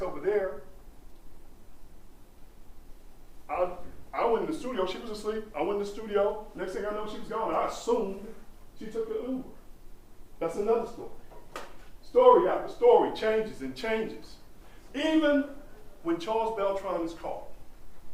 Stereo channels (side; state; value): both; identical; correlation 1.00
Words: over there. I went in the studio. She was asleep. I went in the studio. Next thing I know, she was gone. I assumed she took the Uber. That's another story. Story after story changes and changes. Even when Charles Beltran is caught,